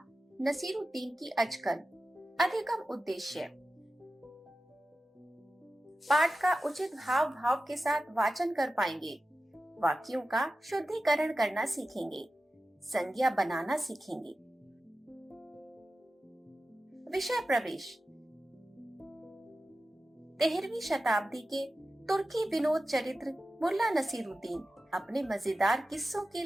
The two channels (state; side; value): normal; both; correlation 0.93